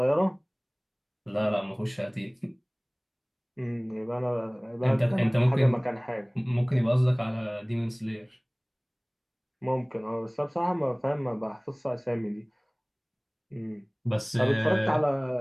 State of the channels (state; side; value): identical; both; correlation 1.00